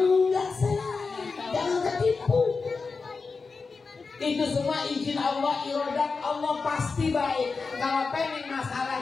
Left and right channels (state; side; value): quieter; right; 4.5 dB